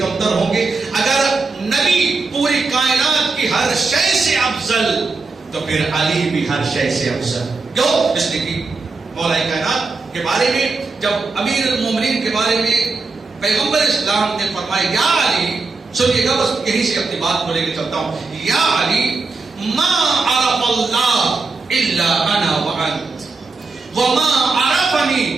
ہوں گے. اگر نبی پوری کائنات کی ہر شے سے افضل تو پھر علی بھی ہر شے سے افضل. کیوں؟ اس لیے کہ مولا کائنات کے بارے میں جب امیر المومنین کے بارے میں پیغمبر اسلام نے فرمایا یا علی, سنیے گا بس یہیں سے اپنی بات کو لے کے چلتا ہوں, یا علی ما عرف اللہ الا انا وانت وما عرفنی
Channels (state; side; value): quieter; left; 4.0 dB